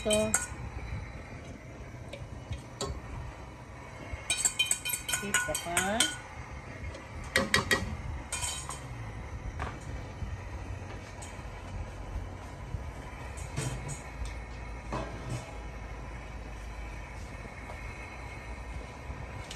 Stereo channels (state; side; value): identical; both; correlation 1.00